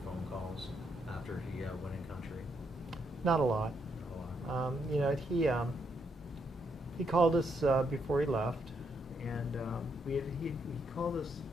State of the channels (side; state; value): both; normal; correlation 0.77